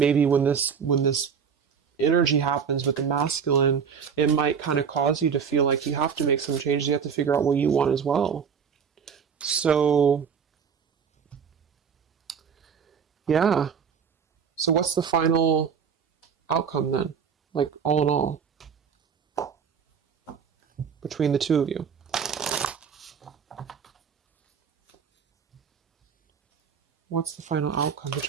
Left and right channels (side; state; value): left; quieter; 6.8 dB